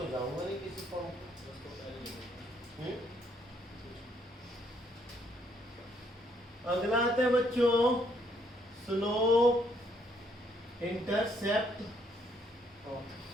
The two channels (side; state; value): both; normal; correlation 0.70